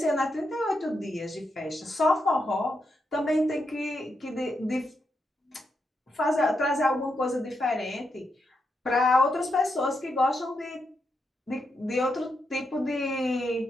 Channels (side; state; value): both; normal; correlation 0.83